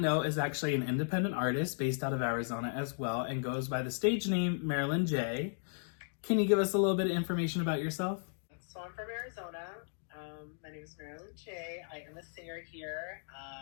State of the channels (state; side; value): silent; right; digital silence